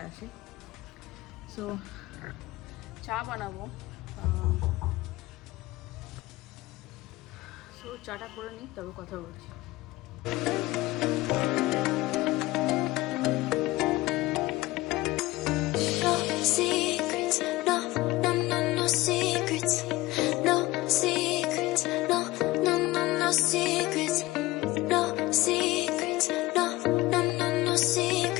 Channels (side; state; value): right; quieter; 19.2 dB